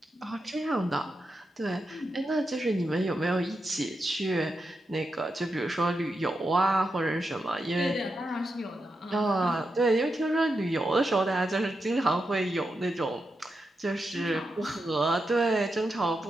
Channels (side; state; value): both; normal; correlation 0.87